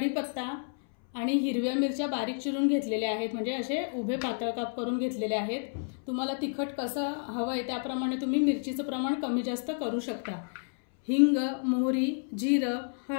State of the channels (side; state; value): right; silent; 58 dB below the other